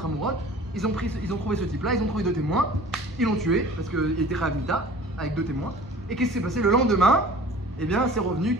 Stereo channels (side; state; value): both; normal; correlation 0.45